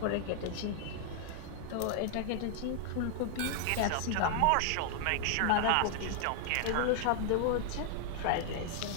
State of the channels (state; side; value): different; both; correlation 0.00